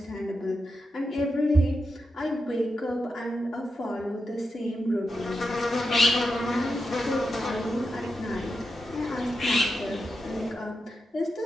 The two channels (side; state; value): both; normal; correlation 0.88